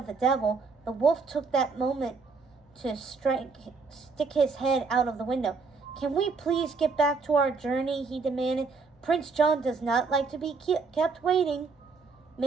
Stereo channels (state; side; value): quieter; left; 4.5 dB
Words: the devil, the wolf took that moment to stick his head out of the window. Can we please get back to our journey? He demanded. Prince John does not like to be kept waiting.